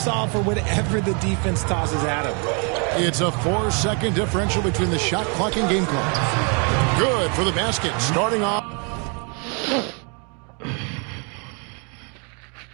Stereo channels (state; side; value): quieter; left; 35.8 dB